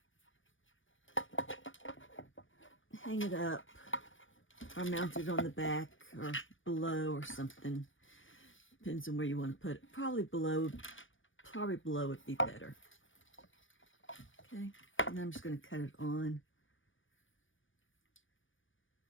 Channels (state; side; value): late; right; 0.57 ms